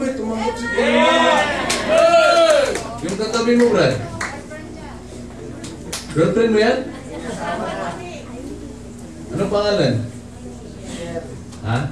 tumanggap si yung katabi mo, Brad? Girlfriend mo yan? Anong pangalan? Ha?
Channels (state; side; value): identical; both; correlation 1.00